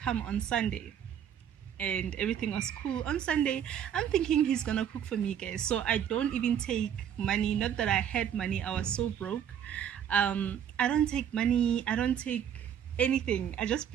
on Sunday. And everything was cool. On Sunday, I'm thinking he's gonna cook for me, guys. So I don't even take money. Not that I had money, I was so broke. I don't take money, I don't take anything. I just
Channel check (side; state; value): left; quieter; 9.1 dB